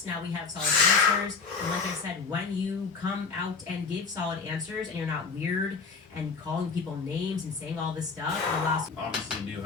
Now we have solid answers. And like I said, when you come out and give solid answers and you're not weird and calling people names and saying all this stuff, it allows. Obviously knew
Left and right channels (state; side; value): quieter; right; 4.9 dB